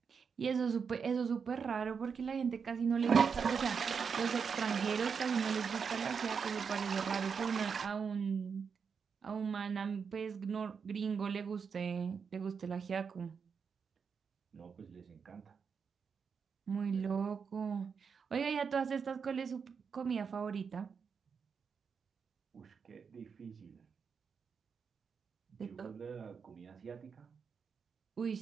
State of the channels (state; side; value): quieter; left; 6.1 dB